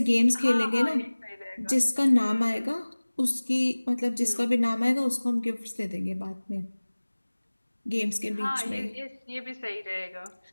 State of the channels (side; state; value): both; inverted; correlation -1.00